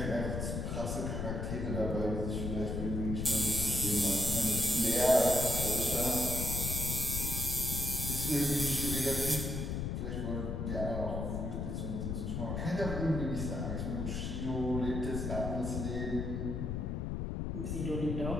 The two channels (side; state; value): left; noise; rumble, 2 dB below the sound